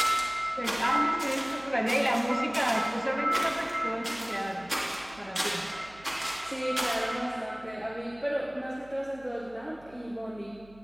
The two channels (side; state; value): right; noise; hum, 24 dB below the sound